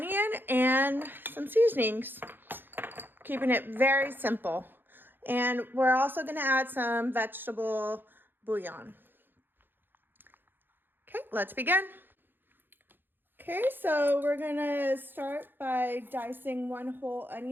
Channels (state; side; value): late; left; 0.097 ms